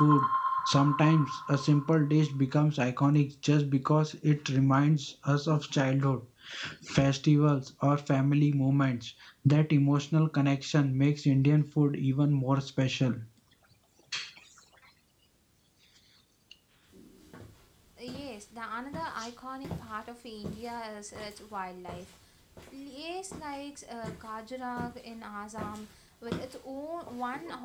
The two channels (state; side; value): identical; both; correlation 1.00